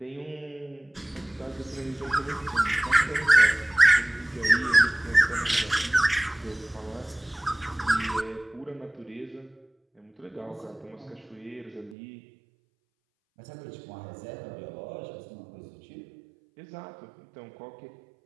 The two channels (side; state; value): left; drops out; at 12.0 s